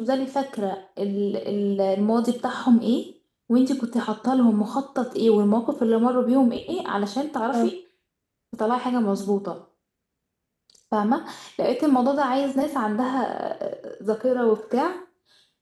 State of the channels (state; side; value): identical; both; correlation 1.00